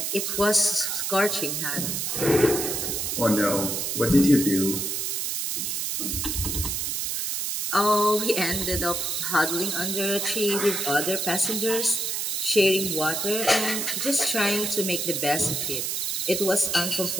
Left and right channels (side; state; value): right; noise; hiss, 1 dB below the sound